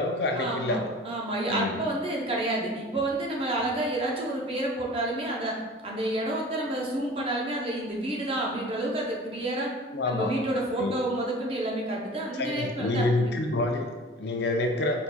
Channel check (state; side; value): normal; both; correlation 0.41